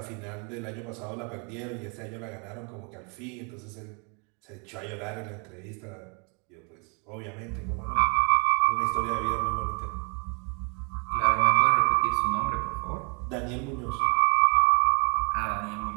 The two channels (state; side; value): quieter; left; 37.1 dB